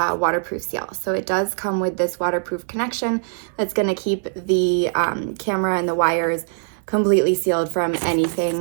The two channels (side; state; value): left; silent; digital silence